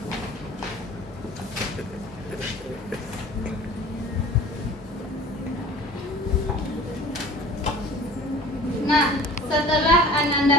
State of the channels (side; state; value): both; normal; correlation 0.45